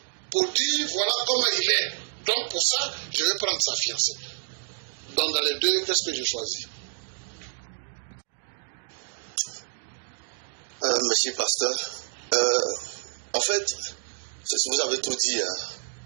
pour dire voilà comment il est. Donc pour ça, je vais prendre sa fiancée. Donc dans les deux, qu'est-ce que je choisis? Monsieur Pasteur, en fait, vous avez tout dit. Hein.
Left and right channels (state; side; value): silent; left; digital silence